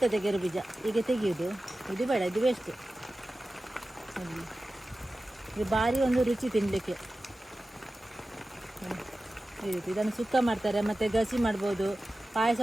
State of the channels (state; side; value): normal; both; correlation 0.95